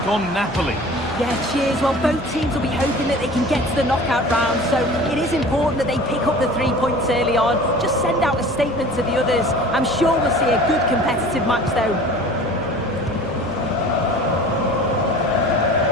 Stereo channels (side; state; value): left; noise; hum, 19 dB below the sound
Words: on Napoli. Yeah, cheers. Well, both teams will be hoping that they can get to the knockout round, so it is important that they pick up the 3 points early on. Just send out a statement to the others. I'm sure we'll see a good competitive match, though.